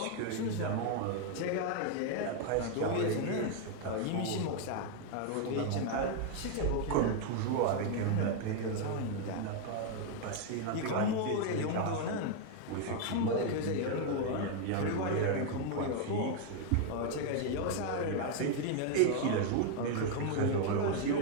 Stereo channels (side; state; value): both; different; correlation 0.01